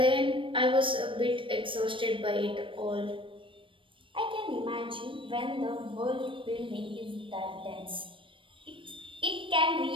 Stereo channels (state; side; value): late; left; 0.25 ms